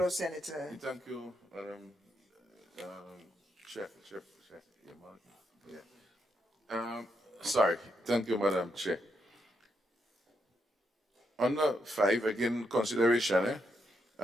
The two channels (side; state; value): both; normal; correlation 0.79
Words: Senator. Thank you, Chair. Yeah. Sorry. Thank you, Madam Chair. On the 5, again, consideration,